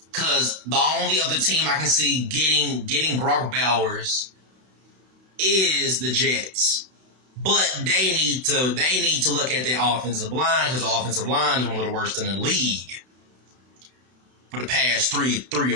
Because the only other team I can see getting Brock Bowers is the Jets. But they need to look at their offensive line, because the offensive line is one of the worst in the league for the past three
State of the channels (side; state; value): left; late; 32 ms